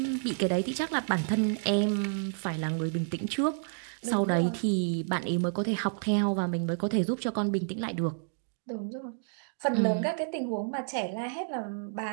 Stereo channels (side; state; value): left; silent; digital silence